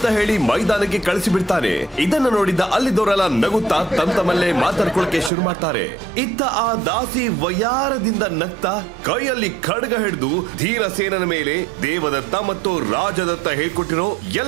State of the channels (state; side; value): drops out; left; at 5.3 s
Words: ಹೇಳಿ ಮೈದಾನಕ್ಕೆ ಕಳಿಸಿ ಬಿಡ್ತಾನೆ. ಇದನ್ನ ನೋಡಿದ ಅಲ್ಲಿದ್ದವರೆಲ್ಲ ನಗುತ್ತಾ ತಮ್ಮಲ್ಲೇ ಮಾತಾಡ್ಕೊಳಕ್ಕೆ ಶುರು ಮಾಡ್ತಾರೆ. ಇತ್ತ ಆ ದಾಸಿ ವಯಾರದಿಂದ ನಗ್ತಾ ಕೈಯಲ್ಲಿ ಖಡ್ಗ ಹಿಡಿದು ಧೀರಸೇನನ ಮೇಲೆ ದೇವದತ್ತ ಮತ್ತು ರಾಜದತ್ತ ಹೇಳ್ಕೊಟ್ಟಿರೋ